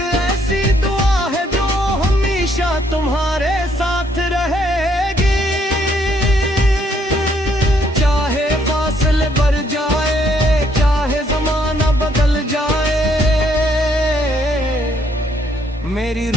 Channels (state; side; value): normal; both; correlation 0.69